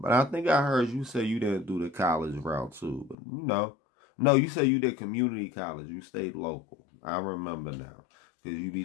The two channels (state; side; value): drops out; right; at 3.2 s